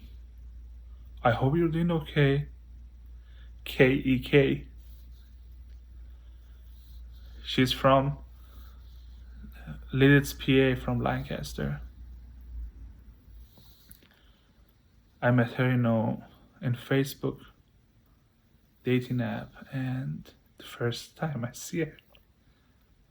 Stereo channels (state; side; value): identical; both; correlation 1.00